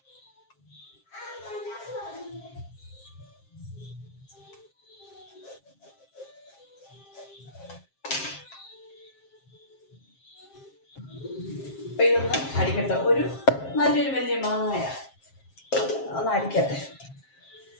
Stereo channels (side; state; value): right; late; 7.5 ms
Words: അപ്പം ഇതൊന്ന് അടിക്കട്ടെ. നല്ലൊരു വലിയ മാങ്ങയാണ്, ഒന്ന് അടിക്കട്ടെ.